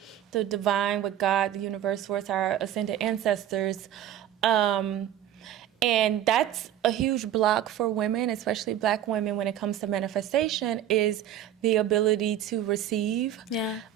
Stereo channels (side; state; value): left; quieter; 11.0 dB